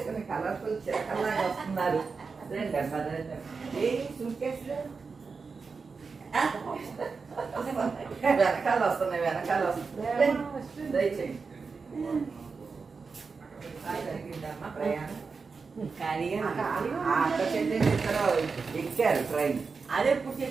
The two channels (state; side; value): quieter; left; 4.8 dB